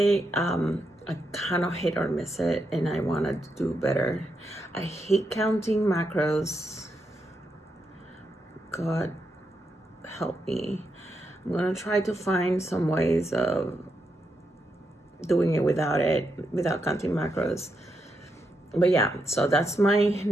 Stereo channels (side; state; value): both; normal; correlation 0.83